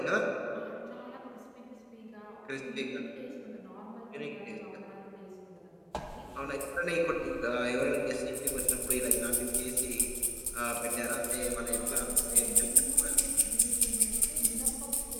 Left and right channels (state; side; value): identical; both; correlation 1.00